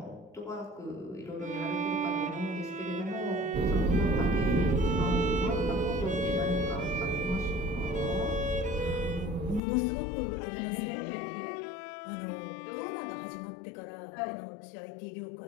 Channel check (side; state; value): right; drops out; at 9.6 s